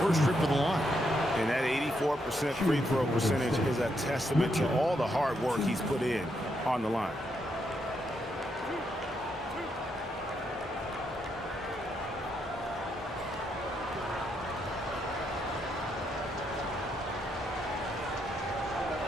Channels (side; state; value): both; normal; correlation 0.78